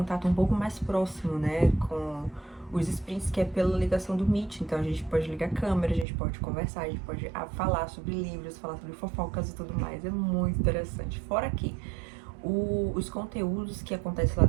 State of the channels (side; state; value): left; drops out; at 6.1 s